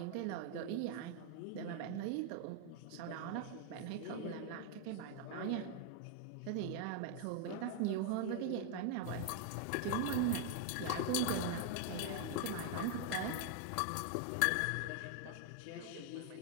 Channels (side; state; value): both; different; correlation 0.01